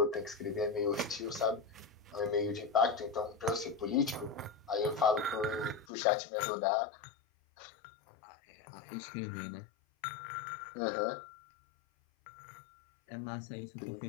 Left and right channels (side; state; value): right; drops out; at 5.9 s